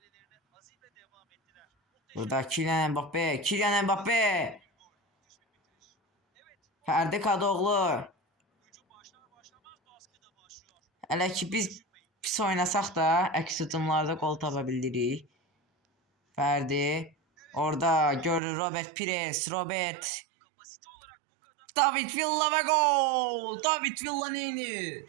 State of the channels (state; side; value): drops out; left; at 18.4 s